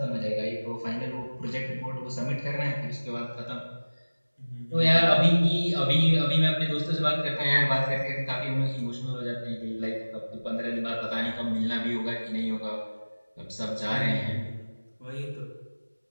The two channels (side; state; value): both; inverted; correlation -1.00